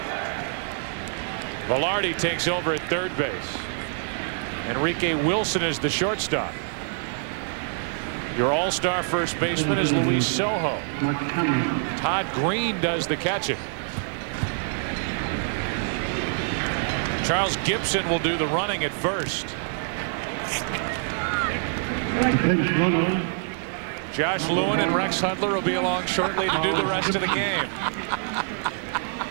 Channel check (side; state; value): left; silent; 59 dB below the other